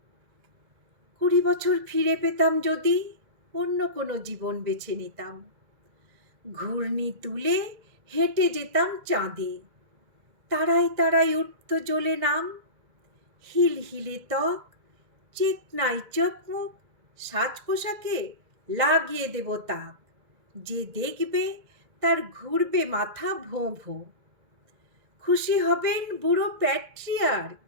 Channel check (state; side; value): late; left; 1.7 ms